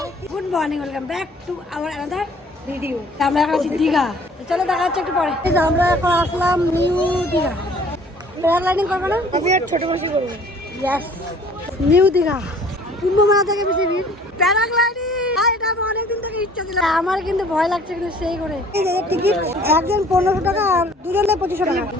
good morning, welcome back to our another video. আমরা এখন আছি দীঘা, চলো দেখা হচ্ছে একটু পরে। আমরা এখন আসলাম নিউ দীঘা। প্যারাগ্লাইডিং করবো না? আমি আর ছোট বসে করবো। ইয়েস, নিউ দীঘা কুম্ভ মেলা থেকে বেশি ভিড়। প্যারাগ্লাইডিং এটা আমার অনেকদিন থেকে ইচ্ছা ছিল। আমার কিন্তু ভয় লাগছে, কিন্তু সেই করে টিকিট একজন 1500 টাকা আর দুজনে 2500 টাকা,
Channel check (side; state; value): both; normal; correlation 0.54